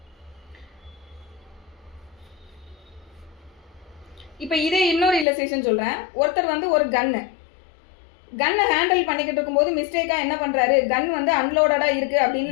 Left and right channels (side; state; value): right; drops out; at 5.2 s